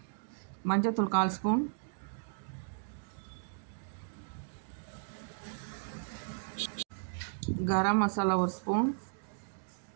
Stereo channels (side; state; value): left; silent; digital silence